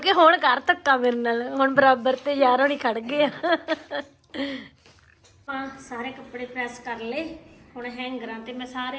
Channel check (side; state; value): both; identical; correlation 1.00